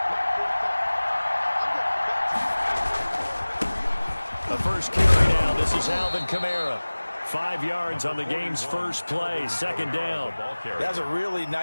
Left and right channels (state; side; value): inverted; both; correlation -1.00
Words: The first carry now. This is Alvin Kamara. 5 yards on the game's first play, second down. That's a really